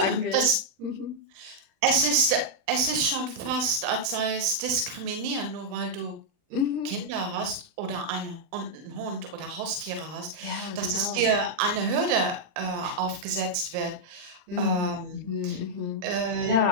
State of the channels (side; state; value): left; late; 39 ms